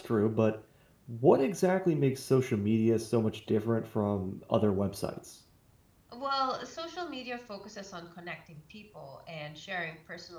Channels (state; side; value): identical; both; correlation 1.00